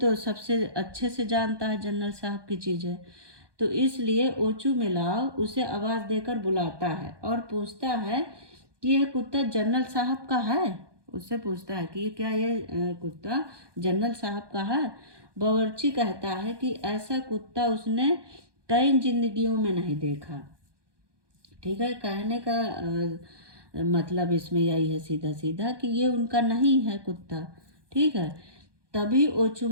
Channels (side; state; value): left; late; 1.2 ms